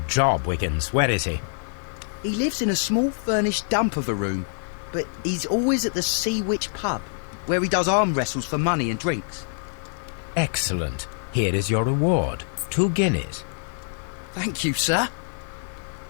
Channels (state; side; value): silent; right; digital silence